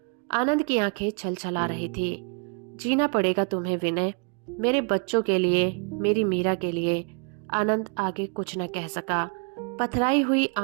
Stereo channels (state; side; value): quieter; left; 37.6 dB